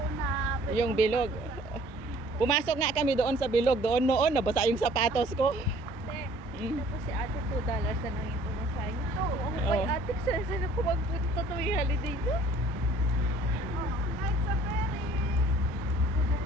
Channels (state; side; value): normal; both; correlation 0.55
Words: na... Yung bilog. Pumasok nga kami doon sa bilog. Doon noon, nabasa yung sapatos ko. Hindi. Tapos si ate $2 na lang yung pumasahin. Ito, ang Oo. may ate, saan ako magpunta tuwing holiday do? Oh, night safari.